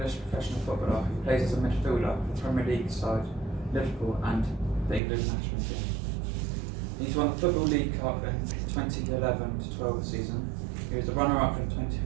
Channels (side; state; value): left; drops out; at 5.0 s